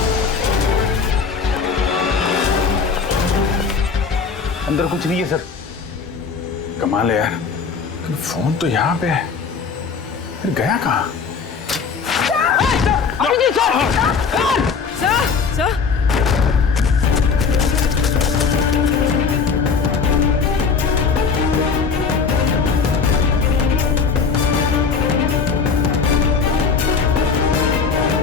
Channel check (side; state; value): right; quieter; 5.4 dB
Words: अंदर कुछ नहीं है सर। कमाल है यार, लेकिन फोन तो यहाँ पे है, फिर गया कहाँ?